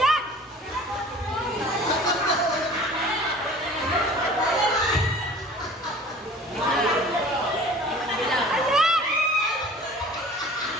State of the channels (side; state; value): both; normal; correlation 0.45